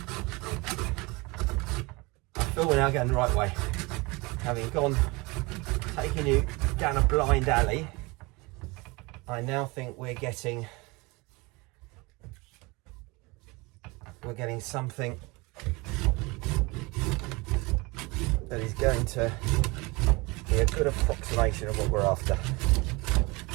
I feel we're now going the right way. Having taking you down a blind alley, I now think we're getting something that is going to be a good approximation of what we're after.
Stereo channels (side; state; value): left; quieter; 25.2 dB